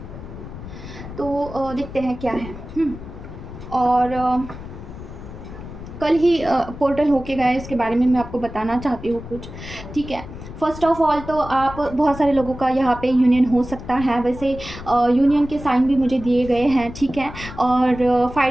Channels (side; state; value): left; noise; rumble, 12 dB below the sound